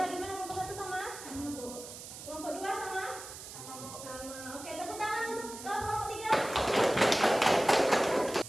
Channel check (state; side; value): noise; right; hiss, 12 dB below the sound